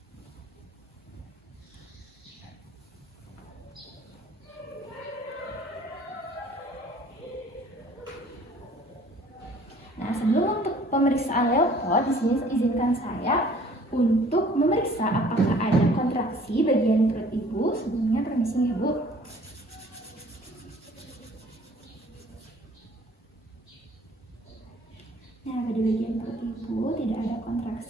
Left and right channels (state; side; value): normal; both; correlation 0.54